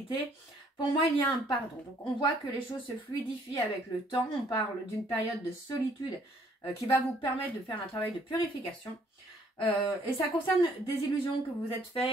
pour moi, il y a un pardon. Donc on voit que les choses se fluidifient avec le temps. On parle d'une période de solitude qui va vous permettre de faire un travail de purification. Et ça concerne des illusions que vous êtes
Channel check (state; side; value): normal; both; correlation 0.64